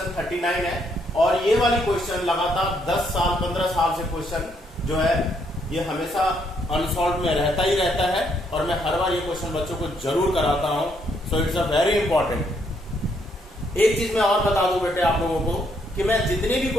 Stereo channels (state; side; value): normal; both; correlation 0.73